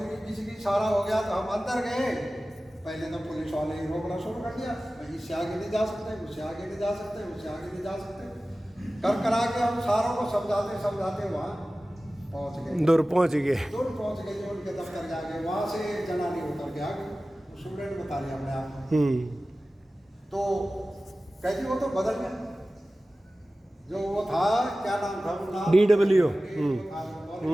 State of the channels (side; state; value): both; normal; correlation 0.96